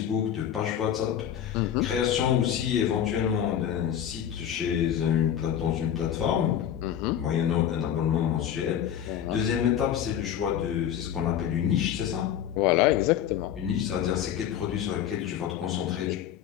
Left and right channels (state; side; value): quieter; right; 9.9 dB